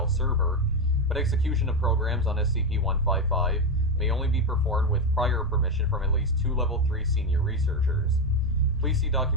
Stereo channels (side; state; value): both; normal; correlation 0.11